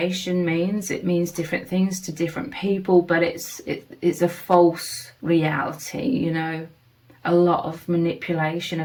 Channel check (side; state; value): both; identical; correlation 1.00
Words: means, it means different things to different people, but it's a false reality, you know, a lot of manipulation